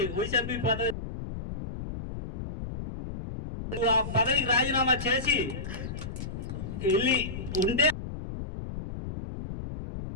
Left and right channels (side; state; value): left; noise; rumble, 8 dB below the sound